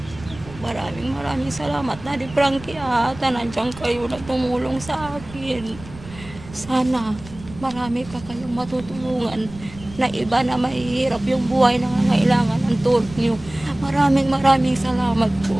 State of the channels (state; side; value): noise; right; rumble, 17 dB below the sound